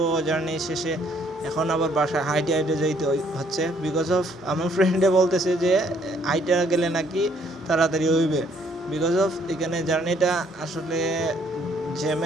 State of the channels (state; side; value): normal; both; correlation 0.65